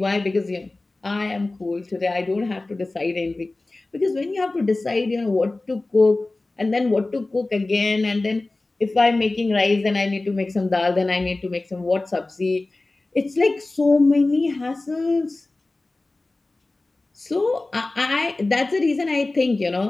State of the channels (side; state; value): right; quieter; 3.0 dB